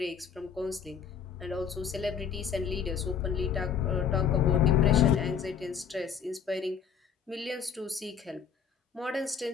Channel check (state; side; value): quieter; right; 7.3 dB